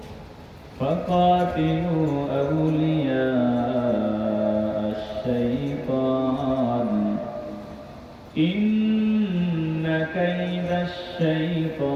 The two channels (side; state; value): both; identical; correlation 1.00